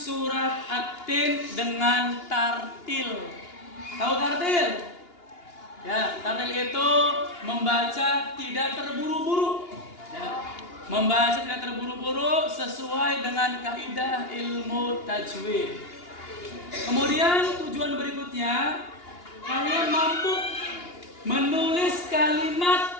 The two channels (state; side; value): late; right; 2.8 ms